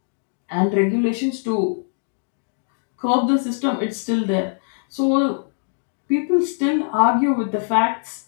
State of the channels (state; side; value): silent; right; digital silence